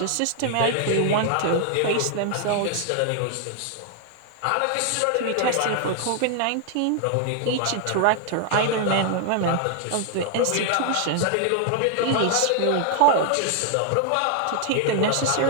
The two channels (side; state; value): both; different; correlation 0.00